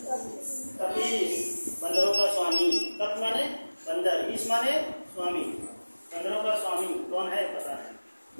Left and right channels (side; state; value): both; inverted; correlation -1.00